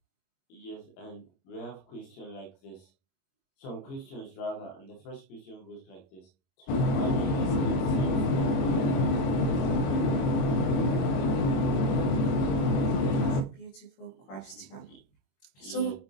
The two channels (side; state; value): right; late; 22 ms